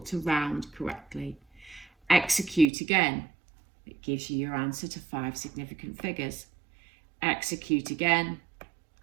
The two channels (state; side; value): drops out; left; at 2.7 s